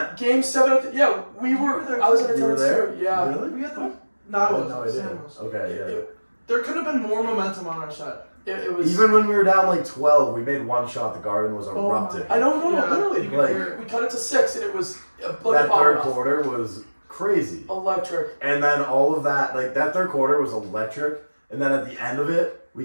Game 7, yeah, we were. were there I was in too. You were attendance there? too. Yeah. Really? We had the. No, I I had wasn't. no idea. Sam was. Okay, yeah. There could have been more momentum on our side. It was. Even when we were down like 12, we made one shot. The Garden was my- erupting. I know, Yeah, literally. you could Like- hear it. We cut it to 6, and it was like That a bomb third off. quarter was crazy. Electric. And then all of that, like that third quarter was electric. And then at the end of it, we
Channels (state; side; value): inverted; both; correlation -1.00